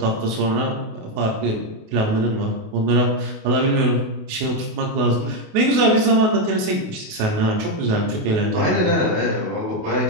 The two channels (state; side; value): late; left; 28 ms